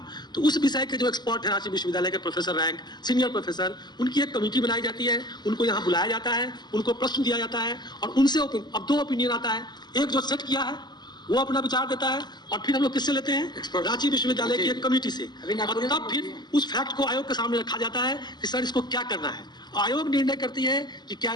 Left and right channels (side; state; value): right; late; 0.21 ms